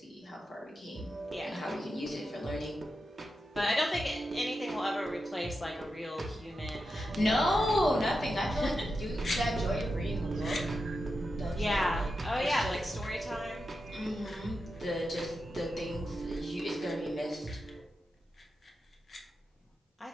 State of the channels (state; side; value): normal; both; correlation 0.89